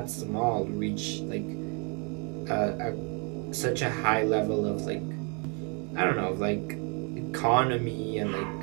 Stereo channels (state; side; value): quieter; left; 35.2 dB